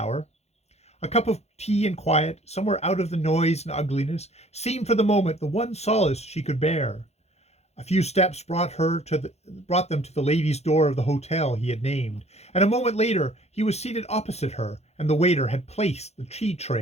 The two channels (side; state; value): right; late; 0.31 ms